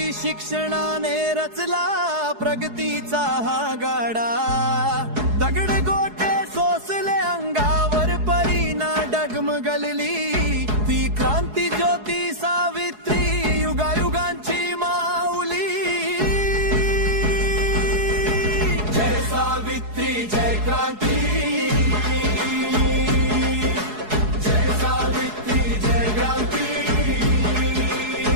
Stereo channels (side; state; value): left; late; 4.7 ms